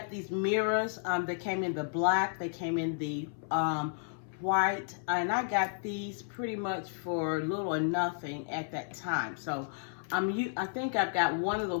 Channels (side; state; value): right; silent; 56 dB below the other